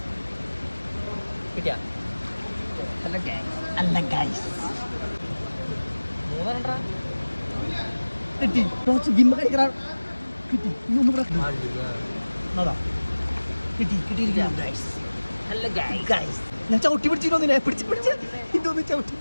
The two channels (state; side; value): inverted; both; correlation -1.00